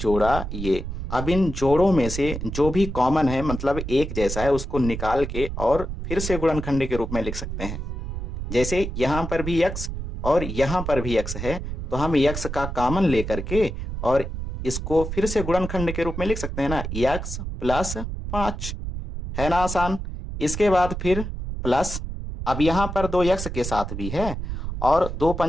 ये। अब इन जोड़ों में से जो भी कॉमन है, मतलब एक जैसा है, उसको निकाल के और फिर से गुणनखंड के रूप में लिख सकते हैं। जैसे यहां पर भी x और यहां पर भी x है, तो हम x का कॉमन लेकर के और इसको फिर से गुणनखंड के रूप में लिख सकते हैं ना, x प्लस 5, है ना आसान। इसके बाद फिर प्लस, अब यहां पर 2x के साथ भी है और 2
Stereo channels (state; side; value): noise; right; rumble, 6 dB below the sound